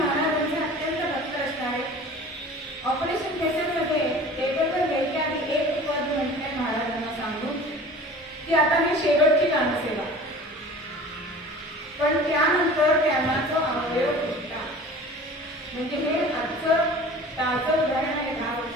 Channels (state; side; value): normal; both; correlation 0.42